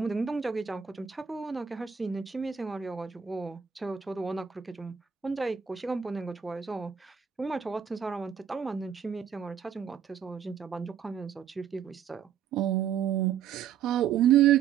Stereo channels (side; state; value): left; quieter; 8.1 dB